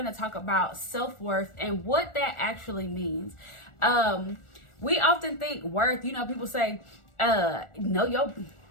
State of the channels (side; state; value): right; late; 1.4 ms